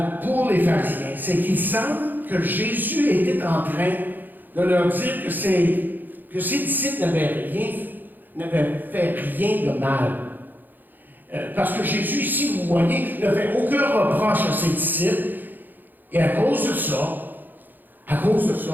pour les pharisiens, c'est qu'il semble que Jésus était en train de leur dire que ses disciples n'avaient fait rien de mal. Parce que Jésus, ici, vous voyez, ne fait aucun reproche à ses disciples. Et à cause de ça,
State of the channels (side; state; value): left; late; 0.088 ms